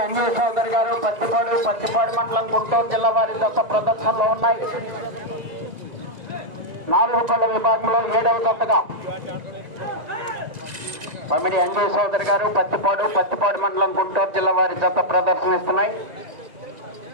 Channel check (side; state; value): left; late; 2.0 ms